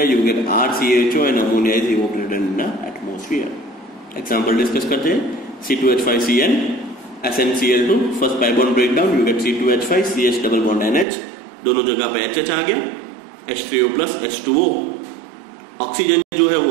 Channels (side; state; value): left; drops out; at 11.1 s